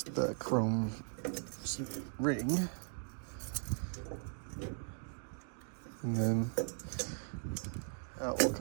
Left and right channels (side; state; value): left; silent; 52 dB below the other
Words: the chrome ring. And then out will